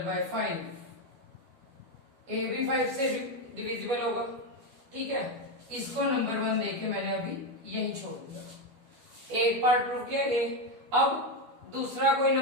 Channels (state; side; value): late; left; 12 ms